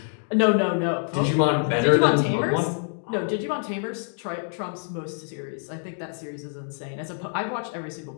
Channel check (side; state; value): right; silent; 61 dB below the other